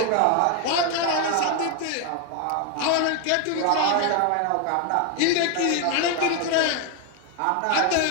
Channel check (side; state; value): both; different; correlation 0.01